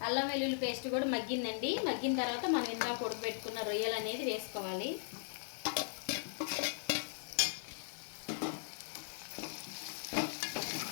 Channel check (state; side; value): silent; right; 52 dB below the other